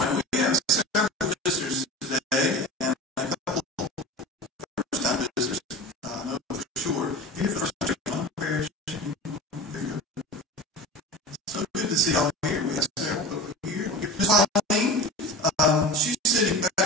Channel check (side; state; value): both; normal; correlation 0.32